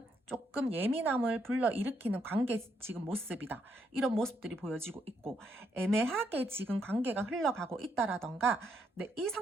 조금 예민함을 불러일으키는 관계 지금 모습이다. 이런 모습들이 보여지고 있고 애매하게 지금 관계가 흘러가고 있다라던가 이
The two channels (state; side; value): normal; both; correlation 0.75